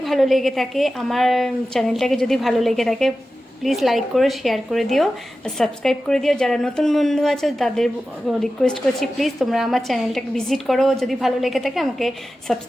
ভালো লেগে থাকে, আমার চ্যানেলটাকে যদি ভালো লেগে থাকে, প্লিজ লাইক করে শেয়ার করে দিও, সাবস্ক্রাইব করে দিও। যারা নতুন বন্ধু আছে তাদের রিকোয়েস্ট করছি, প্লিজ তোমরা আমার চ্যানেলটাকে ভিজিট করো, যদি ভালো লেগে থাকে আমাকে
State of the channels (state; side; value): normal; both; correlation 0.94